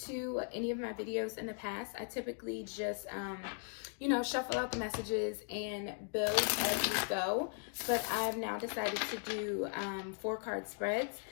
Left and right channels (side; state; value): right; silent; 52 dB below the other